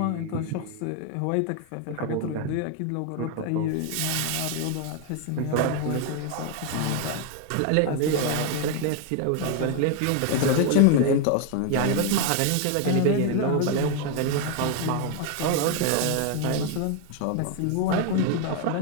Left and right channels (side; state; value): both; different; correlation 0.01